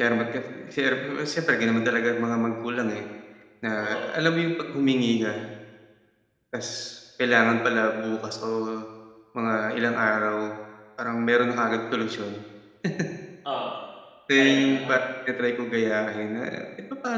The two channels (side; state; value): both; identical; correlation 1.00